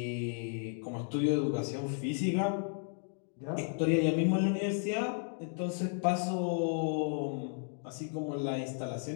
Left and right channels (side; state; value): right; silent; 55 dB below the other